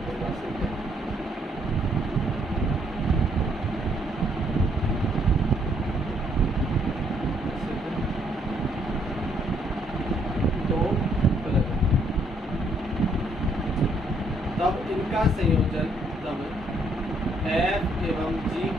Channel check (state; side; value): normal; both; correlation 0.69